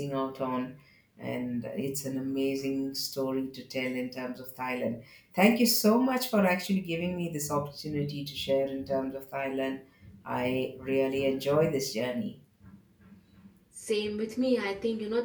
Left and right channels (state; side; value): identical; both; correlation 1.00